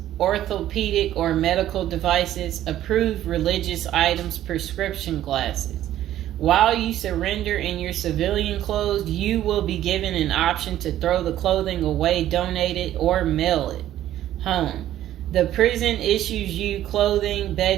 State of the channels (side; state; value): left; quieter; 12.7 dB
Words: orthopedic or medical devices, approved religious items, prescription glasses. While you surrender in your civilian clothes, you will be given an option to throw the clothing away, donate it, or mail it home. The prison issues you clothing,